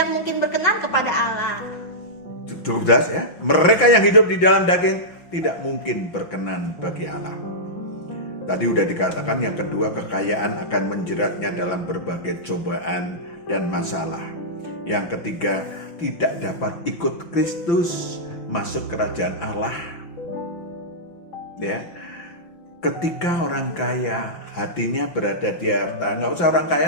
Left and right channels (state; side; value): late; right; 5.9 ms